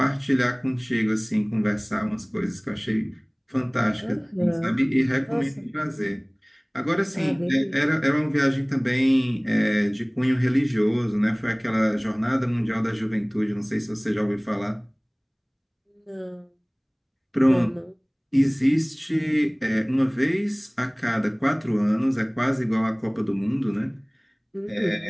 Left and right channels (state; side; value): identical; both; correlation 1.00